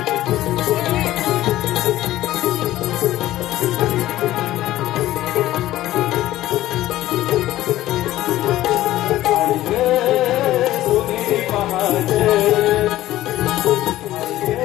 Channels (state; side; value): quieter; right; 15.0 dB